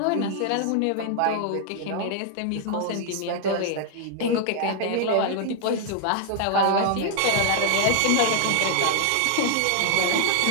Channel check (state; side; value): different; both; correlation 0.00